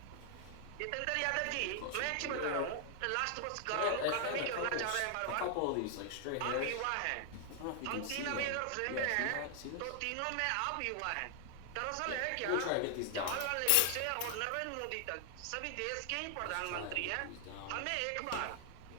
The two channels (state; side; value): different; both; correlation 0.00